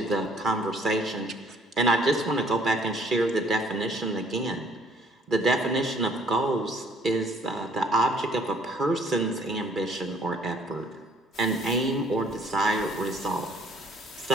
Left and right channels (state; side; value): normal; both; correlation 0.60